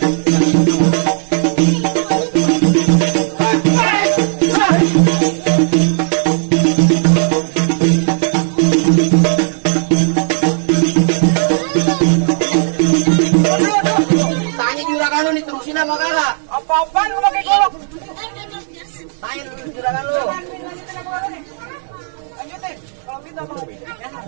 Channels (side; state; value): left; silent; digital silence